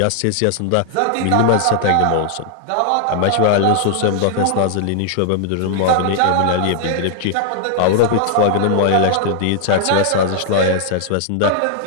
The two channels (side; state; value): both; different; correlation 0.00